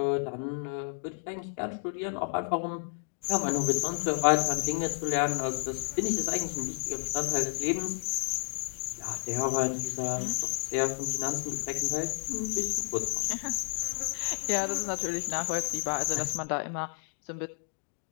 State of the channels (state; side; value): silent; right; digital silence